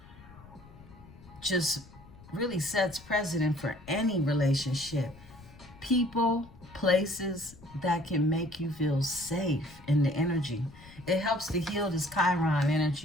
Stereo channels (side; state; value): left; noise; rumble, 21 dB below the sound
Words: just really sets precedent for any relationship. People, places that can make you feel safe in the energy. It helps to heal this Chiron